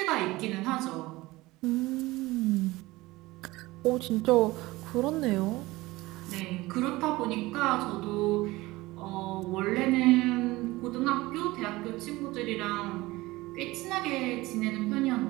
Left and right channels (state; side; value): quieter; left; 19.8 dB